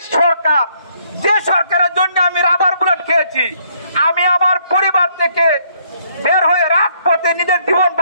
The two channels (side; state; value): both; inverted; correlation -0.68